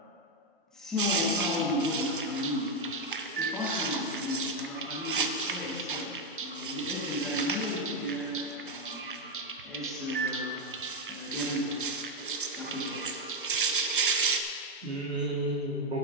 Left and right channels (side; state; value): both; normal; correlation 0.06